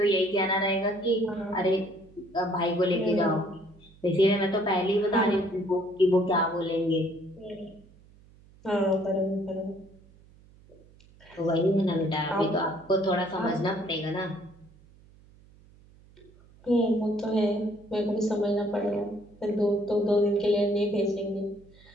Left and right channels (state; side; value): noise; right; hum, 26 dB below the sound